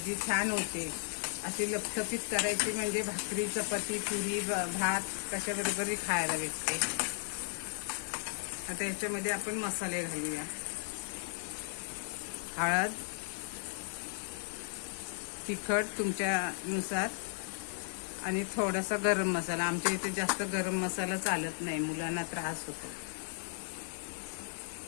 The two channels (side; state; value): right; silent; 54 dB below the other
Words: छान होते. अशी लपथपीत करायची म्हणजे भाकरी, चपाती, पुरी, भात कशाबरोबरही खायला भेटते. आता याच्यामध्ये आपण मसाले घालूया. हळद, तिखट तुमच्यानुसार, आणि थोडासा गरम मसाला. आमच्या इथे जास्त गरम मसाला चालत नाही, मुलांना त्रास होतो.